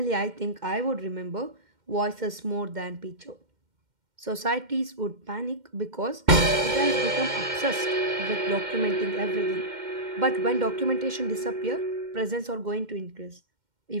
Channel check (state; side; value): late; left; 2.1 ms